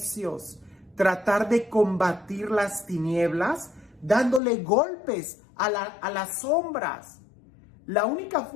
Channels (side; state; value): right; drops out; at 4.4 s